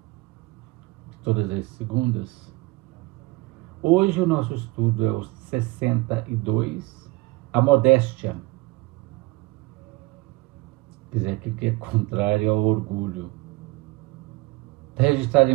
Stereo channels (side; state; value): left; quieter; 22.0 dB